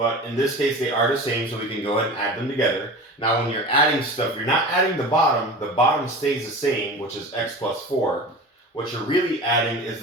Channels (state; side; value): normal; both; correlation 0.34